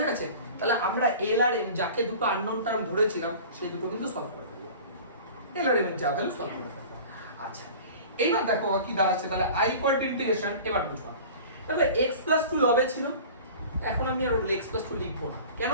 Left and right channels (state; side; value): inverted; both; correlation -0.40